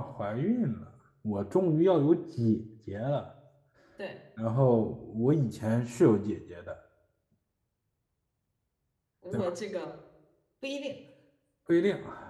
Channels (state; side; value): identical; both; correlation 1.00